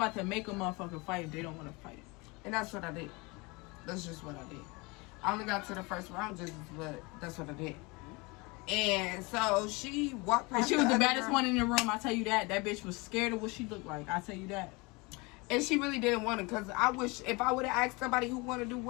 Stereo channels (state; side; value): quieter; right; 26.6 dB